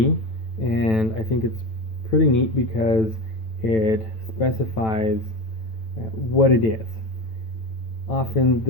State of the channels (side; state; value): right; late; 9.0 ms